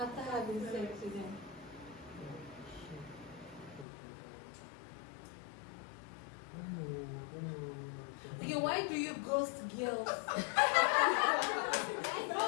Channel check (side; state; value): right; drops out; at 3.9 s